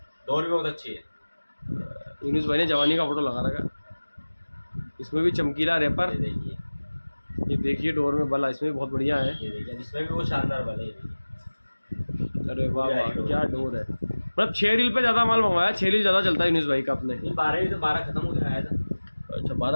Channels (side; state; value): both; inverted; correlation -1.00